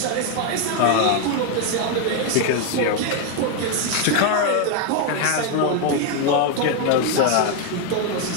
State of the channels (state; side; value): different; both; correlation 0.01